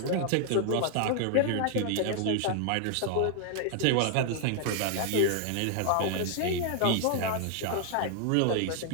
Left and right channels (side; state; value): both; different; correlation 0.00